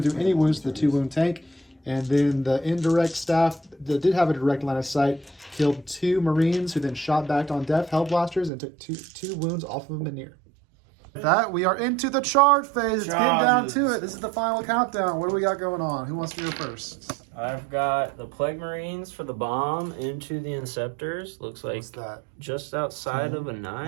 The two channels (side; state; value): left; drops out; at 8.5 s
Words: to do any wounds to the 2 wound tank. And then the indirect staff that did have a direct line of sight killed 2 Marines, who then shot back on Death Hell Blasters and took two wounds off of Manir. With that, we are into the charge phase. It's getting down to it. This is the final countdown. What do we got going on? Who wants to go first? I've got the Plague Marines for the bomb into the Inceptors. Looks like What's that? just outside of a